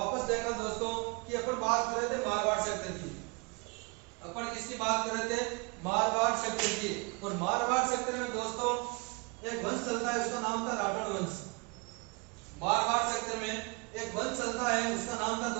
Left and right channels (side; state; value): left; quieter; 29.4 dB